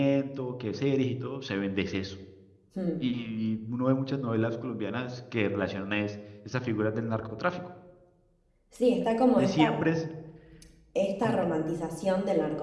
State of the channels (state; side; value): identical; both; correlation 1.00